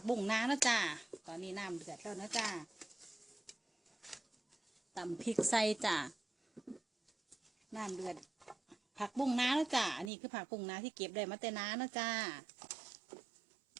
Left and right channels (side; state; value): left; drops out; at 10.1 s